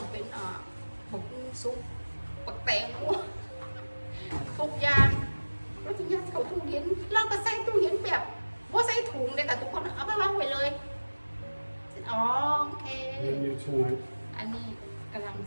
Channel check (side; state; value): both; inverted; correlation -1.00